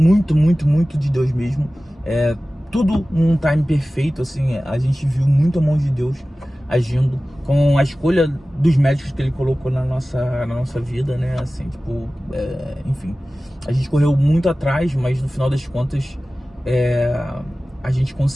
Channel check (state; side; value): normal; both; correlation 0.96